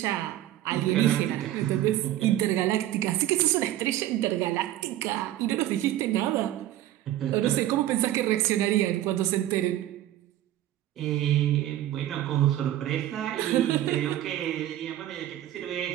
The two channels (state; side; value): quieter; left; 13.3 dB